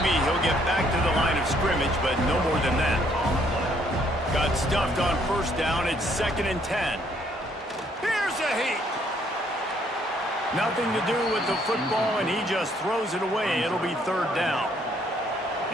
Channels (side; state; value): both; normal; correlation 0.67